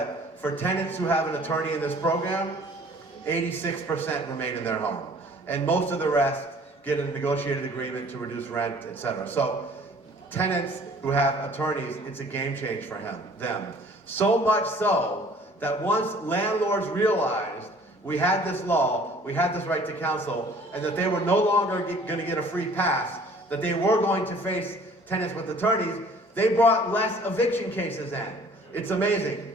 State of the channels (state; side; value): normal; both; correlation 0.53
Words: for tenants who have an attorney in this program, 86% remain in their home. And most of the rest get a negotiated agreement to reduce rent, etc. So tenants who have attorneys, it's a game change for them. So much so that once landlords realized we had this law, we had this right to counsel, and that they were no longer going to get a free pass, that they were going to face tenants with attorneys, they brought less eviction cases in. It's amazing.